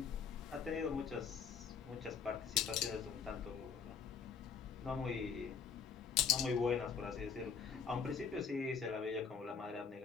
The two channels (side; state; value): right; quieter; 6.3 dB